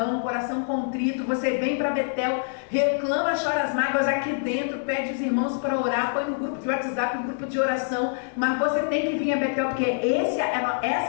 coração contrito. Você vem para Betel, reclama, chora as mágoas aqui dentro, pede os irmãos para orar, põe no grupo de WhatsApp, no grupo de oração, mas você tem que vir a Betel, porque essa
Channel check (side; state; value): right; silent; digital silence